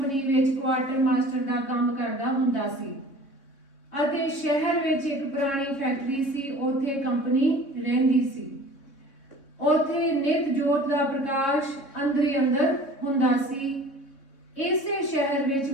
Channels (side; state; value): right; late; 3.6 ms